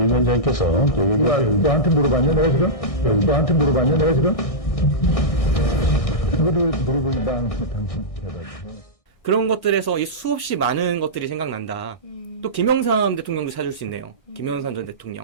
위원장님께서 너한테 물어봤냐 내가 지금? 너한테 물어봤냐 내가 지금? 그거를 물어보니까 당신 대답이죠. 그런 것들에서 이 수없이 많은 것들이 생각난다. 또 김영삼 대통령도 찾을 수 있네요. 김영삼 전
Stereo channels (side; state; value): right; late; 1.6 ms